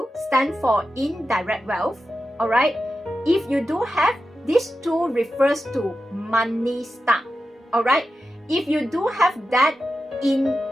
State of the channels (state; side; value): normal; both; correlation 0.91